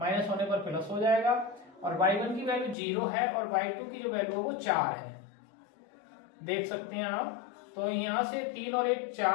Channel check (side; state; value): right; drops out; at 2.8 s